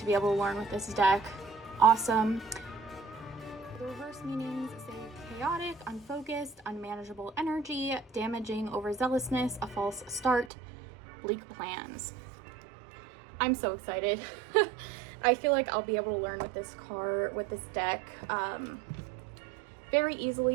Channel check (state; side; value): drops out; left; at 10.5 s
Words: be able to learn with this deck. Awesome. The reverse meanings say chaotic, unfocused, unmanageable energy, damaging overzealousness, a false start, bleak plans. I'm so excited. I feel like I'll be able to learn with this deck very